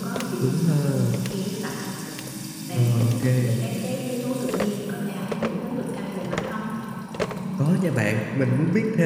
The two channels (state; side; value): identical; both; correlation 1.00